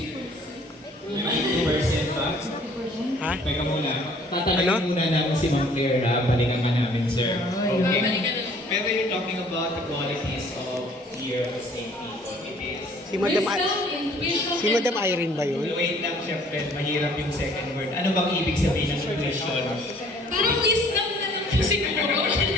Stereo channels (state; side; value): normal; both; correlation 0.56